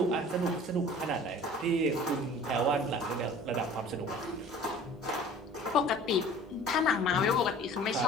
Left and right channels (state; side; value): normal; both; correlation 0.45